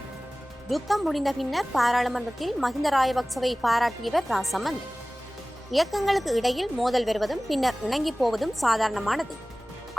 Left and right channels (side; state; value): both; normal; correlation 0.98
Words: யுத்தம் முடிந்த பின்னர் பாராளுமன்றத்தில் மஹிந்த ராஜபக்சவை பாராட்டியவர் ராசமந்த். இயக்கங்களுக்கு இடையில் மோதல் வருவதும் பின்னர் இணங்கி போவதும் சாதாரணமானது.